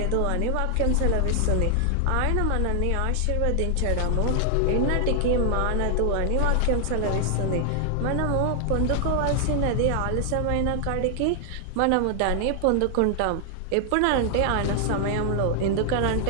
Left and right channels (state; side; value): different; both; correlation 0.00